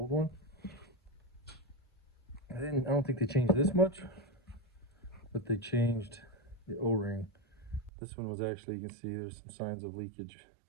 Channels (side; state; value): left; drops out; at 7.9 s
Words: one. I don't think they changed this much, but they changed the O-ring. This one was actually, you can see there's some signs of leakage.